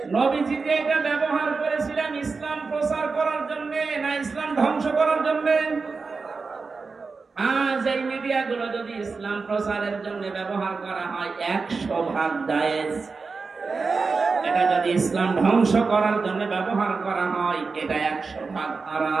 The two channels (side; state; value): left; quieter; 4.5 dB